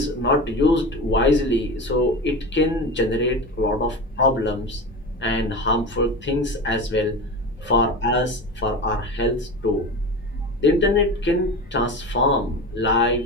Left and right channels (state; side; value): normal; both; correlation 0.27